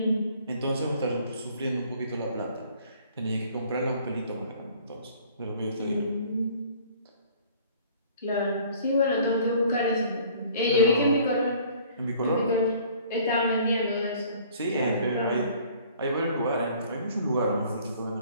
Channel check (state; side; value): inverted; both; correlation -0.54